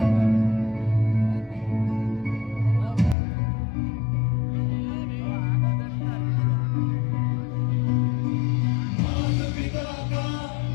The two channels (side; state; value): right; drops out; at 3.2 s